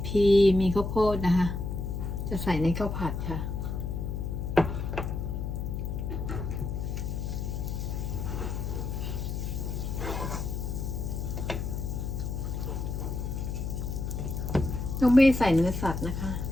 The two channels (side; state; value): left; noise; hum, 3 dB below the sound